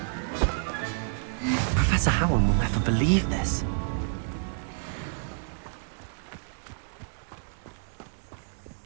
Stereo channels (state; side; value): silent; left; digital silence